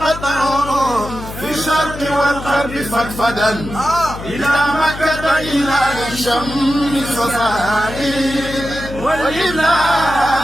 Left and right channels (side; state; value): left; noise; hum, 11 dB below the sound